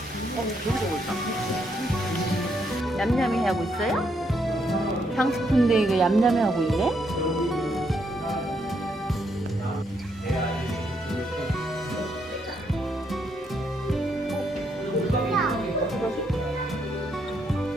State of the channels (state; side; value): normal; both; correlation 0.75